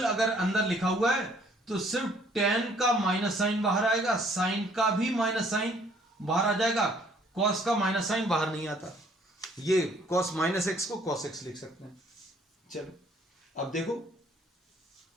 अगर अंदर लिखा हुआ है तो सिर्फ tan का माइनस साइन बाहर आएगा, साइन का भी माइनस साइन बाहर आ जाएगा, cos का माइनस साइन बाहर नहीं आता। ये cos माइनस एक्स को cos x लिख सकते हैं। चलो अब देखो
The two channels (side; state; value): both; normal; correlation 0.61